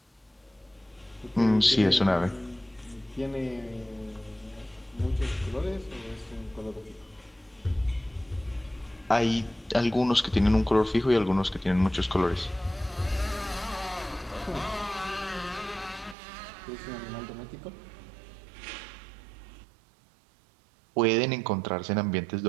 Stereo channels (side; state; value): left; drops out; at 16.2 s